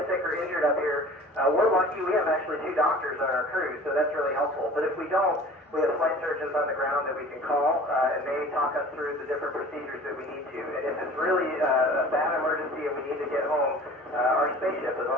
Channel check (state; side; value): normal; both; correlation 0.44